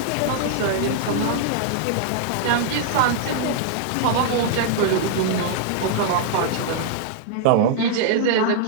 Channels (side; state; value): both; different; correlation -0.01